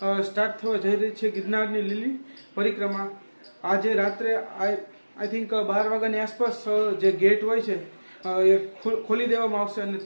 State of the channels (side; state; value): both; inverted; correlation -1.00